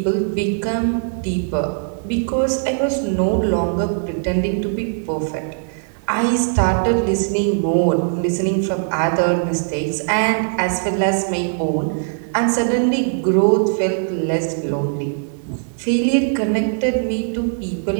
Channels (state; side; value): silent; left; digital silence